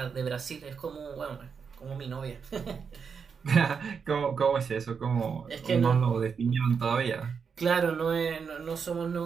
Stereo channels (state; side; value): quieter; left; 6.1 dB